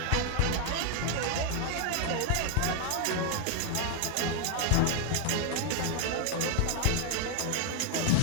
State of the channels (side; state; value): both; different; correlation 0.00